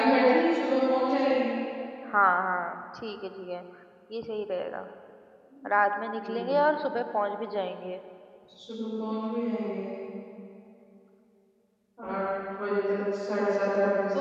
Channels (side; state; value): both; identical; correlation 1.00